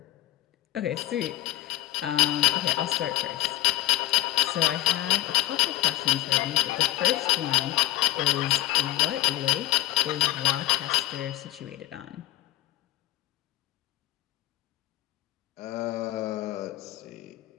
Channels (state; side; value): quieter; right; 16.5 dB